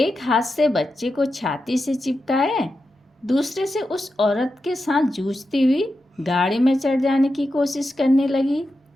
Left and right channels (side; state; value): both; normal; correlation 0.89